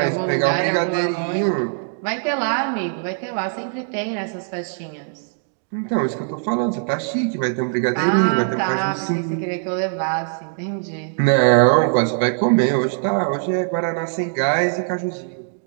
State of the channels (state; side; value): silent; left; digital silence